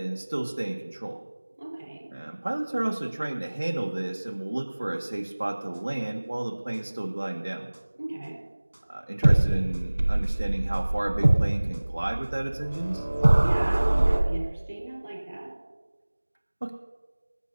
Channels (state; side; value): inverted; both; correlation -1.00